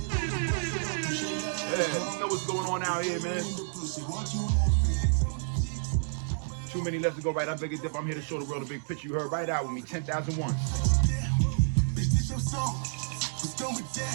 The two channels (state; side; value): silent; left; digital silence